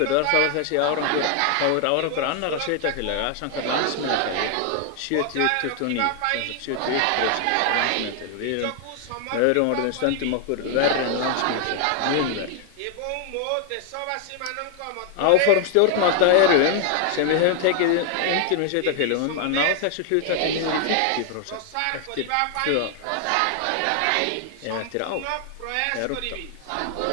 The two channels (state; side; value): different; both; correlation 0.00